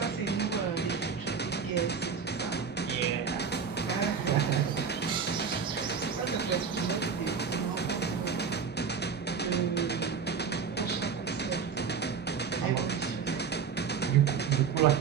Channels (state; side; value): quieter; left; 6.2 dB